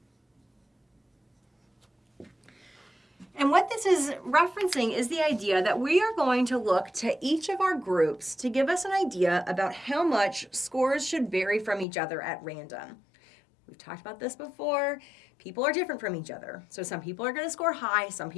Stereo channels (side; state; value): right; drops out; at 11.9 s